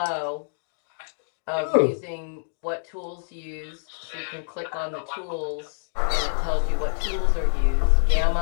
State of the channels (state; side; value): silent; right; digital silence